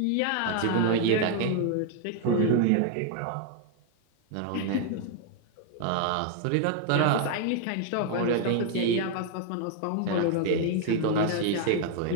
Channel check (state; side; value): different; both; correlation 0.00